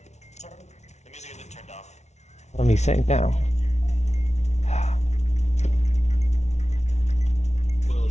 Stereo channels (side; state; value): right; late; 0.32 ms